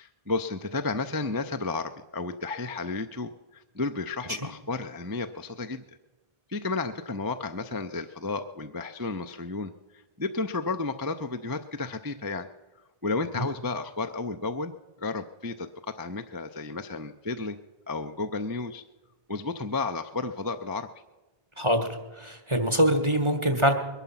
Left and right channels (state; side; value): late; left; 1.4 ms